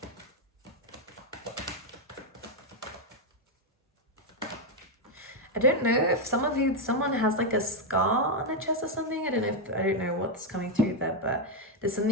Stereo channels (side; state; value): both; normal; correlation 0.02